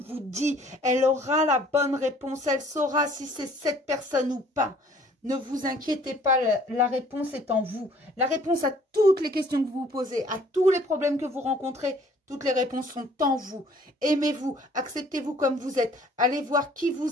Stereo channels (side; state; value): both; normal; correlation 0.56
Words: dit. Elle aura la bonne réponse, elle saura si c'est cette personne ou pas. Ne vous inquiétez pas, la réponse est en vous. La réponse à toutes les questions que vous vous posez, à tous les problèmes que vous rencontrez, toutes les réponses sont en vous. Aimez-vous, acceptez-vous comme vous êtes. Allez voir qui